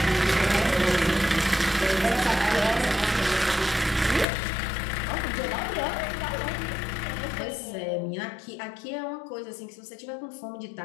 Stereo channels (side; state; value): right; drops out; at 4.2 s